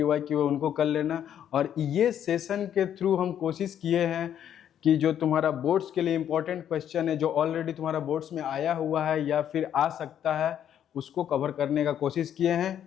है उनको कर लेना। और ये सेशन के थ्रू हम कोशिश किए हैं कि जो तुम्हारा बोर्ड्स के लिए इम्पोर्टेंट क्वेश्चन है, जो ऑलरेडी तुम्हारा बोर्ड्स में आया हुआ है या फिर आ सकता है, उसको कवर करने का कोशिश किए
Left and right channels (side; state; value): right; quieter; 9.8 dB